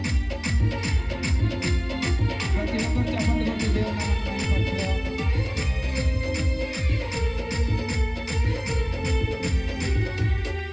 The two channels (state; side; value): identical; both; correlation 1.00